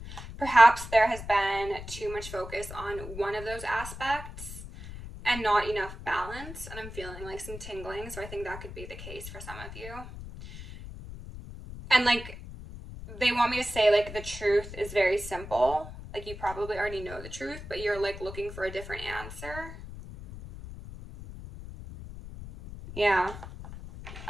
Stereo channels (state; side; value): noise; left; rumble, 12 dB below the sound